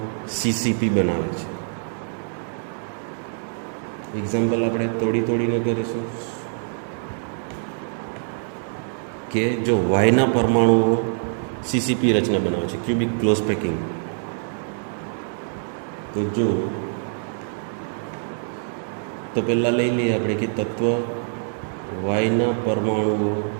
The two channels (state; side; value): silent; left; digital silence